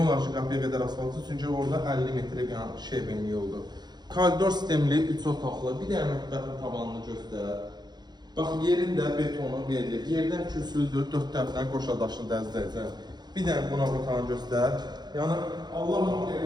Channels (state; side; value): late; left; 0.20 ms